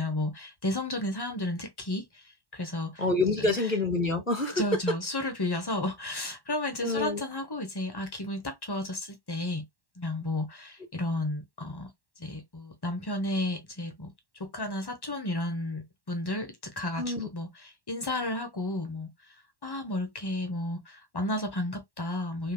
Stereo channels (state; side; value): late; right; 1.1 ms